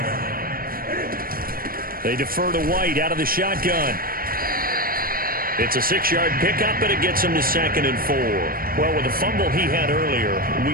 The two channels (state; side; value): late; left; 0.42 ms